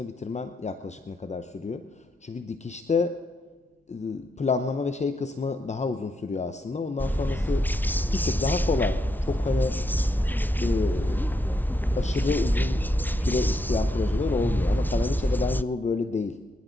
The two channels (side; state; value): both; normal; correlation 0.79